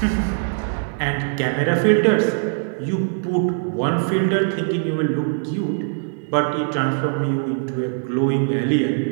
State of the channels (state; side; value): silent; left; digital silence